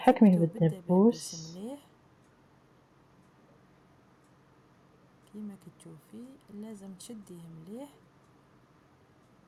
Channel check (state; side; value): identical; both; correlation 1.00